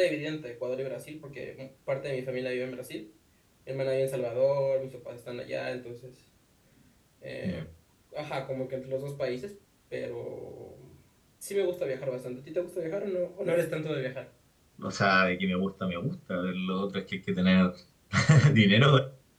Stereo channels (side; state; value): both; identical; correlation 1.00